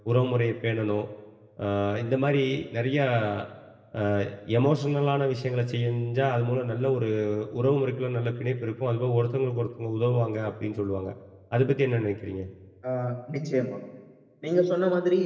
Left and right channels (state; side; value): identical; both; correlation 1.00